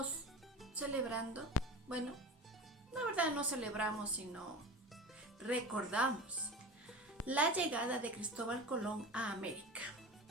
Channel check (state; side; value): normal; both; correlation 0.31